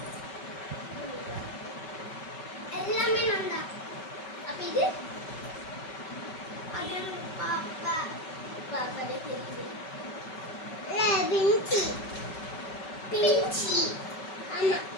எல்லாமே நான் தான். அப்ப இது அது பாப்பா பாப்பாவே தெரியுது. பிஞ்சி பிஞ்சி ஆமா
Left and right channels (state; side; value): late; right; 5.3 ms